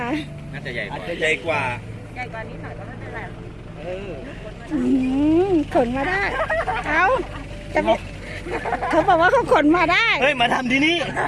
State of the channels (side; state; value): both; identical; correlation 1.00